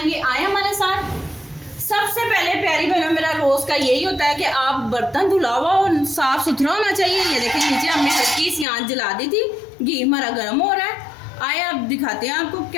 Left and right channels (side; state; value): right; drops out; at 8.7 s